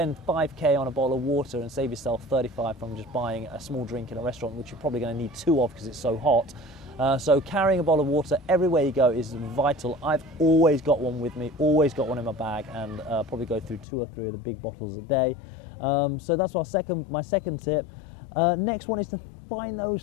5k on a bottle of water and save yourself 35 from just buying a small drink in a restaurant, which you're probably going to need 2 of because it's so hot. So carrying a bottle of water everywhere you go is vital. I've always got one with me, always got one in my bag, and probably go through 2 or 3 of the big bottles a day. So that's my second tip. Next one is to find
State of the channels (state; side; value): drops out; right; at 13.9 s